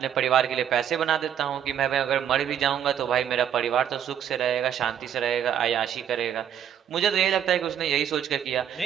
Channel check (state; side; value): quieter; left; 9.3 dB